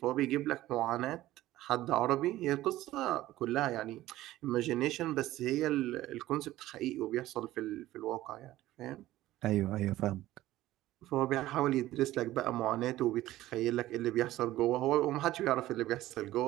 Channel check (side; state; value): left; quieter; 15.6 dB